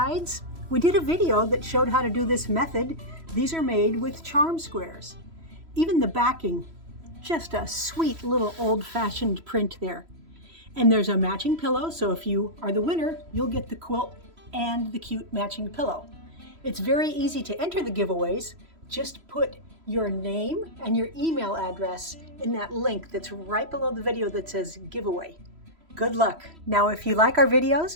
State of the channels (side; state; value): left; late; 3.0 ms